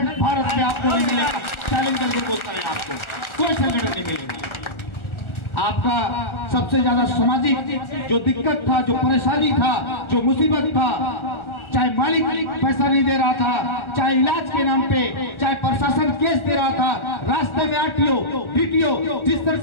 भारत में आपको नहीं मिलेगा। चैलेंज करके बोलता है, आपको कोई संगठन नहीं मिलेगा। आपका सबसे ज्यादा सामाजिक जो दिक्कत था, जो परेशानी था, जो मुसीबत था, चाहे मालिक पैसा नहीं दे रहा था, चाहे इलाज के नाम पे, चाहे प्रशासन केस दे रहा था, रास्ते में आरटीओ डीटीओ जिस तरह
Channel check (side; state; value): right; late; 1.4 ms